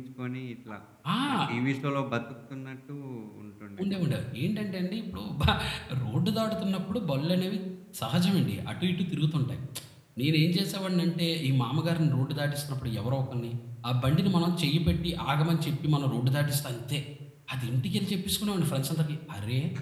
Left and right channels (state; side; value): identical; both; correlation 1.00